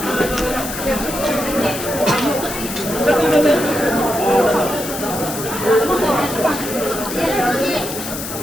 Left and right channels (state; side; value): noise; left; hiss, 8 dB below the sound